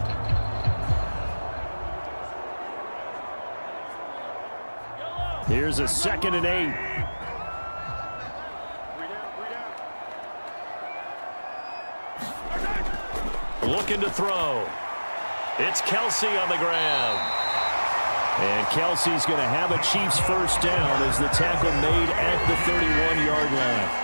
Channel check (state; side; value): inverted; both; correlation -1.00